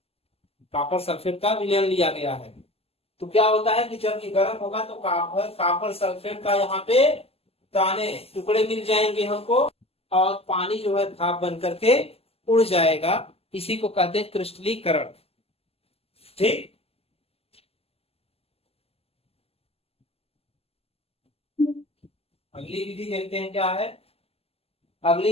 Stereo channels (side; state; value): right; late; 0.29 ms